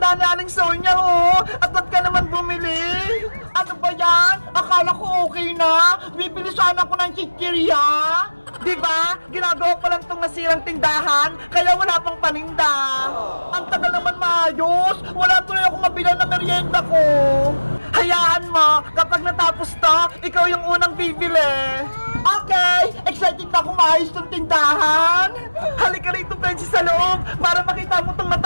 ni Aling Sonia, oh! At ba't ka naman bumili? Ano ba yan? Akala ko okay na. Bibili sana ako ng chichirya. Diba? Ginagawa pa lang itong nasirang tindahan, kaya wala pang paninda. Ang tagal naman maayos. Wala tuloy ako mabilang na merienda ko. Hayaan mo, kapag natapos to, ikaw yung unang bibili. Okay, excited na ako maayos tong tindahan. Halika rito, Princess, sa loob para makita mo tong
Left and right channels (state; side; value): inverted; both; correlation -1.00